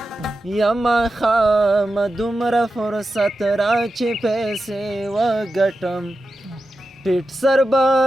خام دومره فرصت را چې پیسې وګټم ټیټ سر به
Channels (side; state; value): both; normal; correlation 0.91